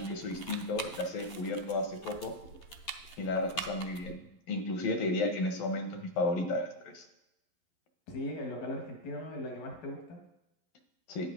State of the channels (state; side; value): late; right; 11 ms